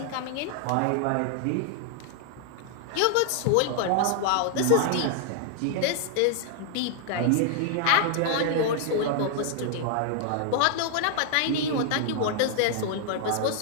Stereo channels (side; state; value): both; different; correlation 0.00